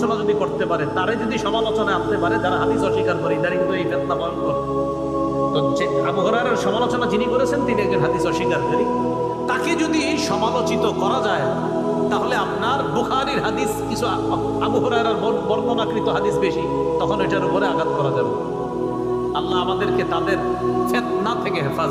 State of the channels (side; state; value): both; identical; correlation 1.00